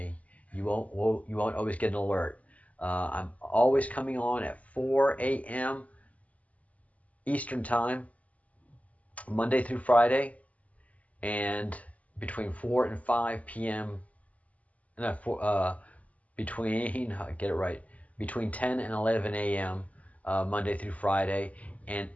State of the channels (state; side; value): late; right; 0.071 ms